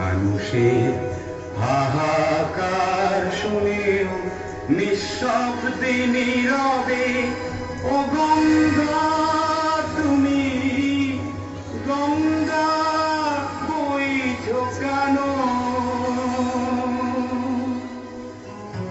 হাহাকার শুনেও নিঃশব্দে নীরবে ও গঙ্গা তুমি গঙ্গা বইছো কেন?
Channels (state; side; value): identical; both; correlation 1.00